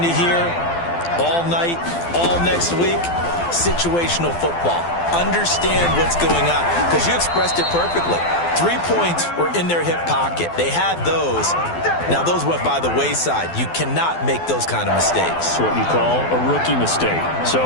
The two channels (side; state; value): right; late; 12 ms